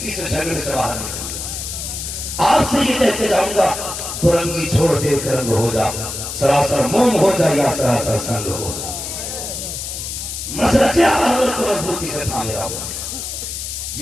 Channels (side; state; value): left; noise; hiss, 6 dB below the sound